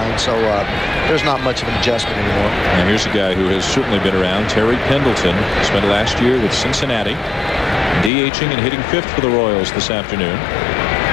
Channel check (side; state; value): right; drops out; at 8.1 s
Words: so there's not much of an adjustment anymore. Now here's a guy who has certainly been around, Terry Pendleton. Spent last year with Cincinnati, DHing and hitting 5th for the Royals this afternoon.